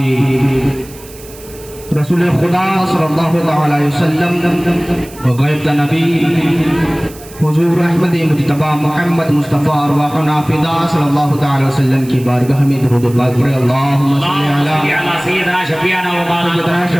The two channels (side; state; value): right; noise; hiss, 20 dB below the sound